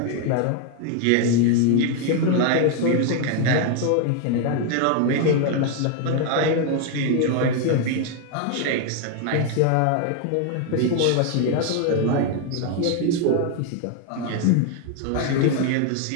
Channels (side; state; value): both; different; correlation 0.01